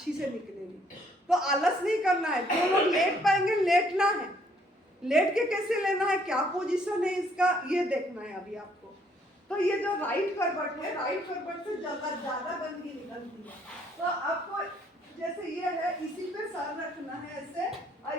से निकलेगी। तो आलस नहीं करना है। जो लोग लेट पाएंगे, लेटना है। लेट के कैसे लेना है, क्या पोजीशन है इसका, ये देखना है अभी आपको। तो ये जो राइट करवट है, राइट करवट से ज्यादा गंदगी निकलती है। तो आपको जैसे ये है, इसी पे सर रखना है ऐसे, और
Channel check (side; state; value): both; normal; correlation 0.66